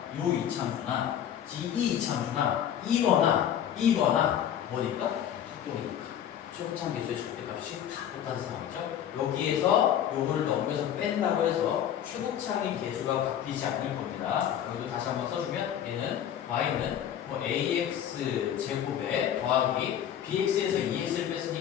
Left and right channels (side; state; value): right; quieter; 10.0 dB